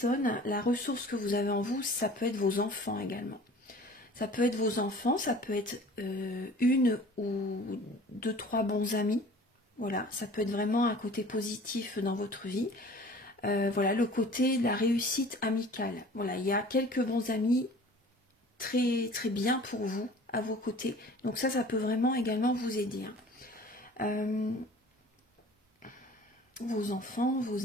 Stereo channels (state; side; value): normal; both; correlation 0.46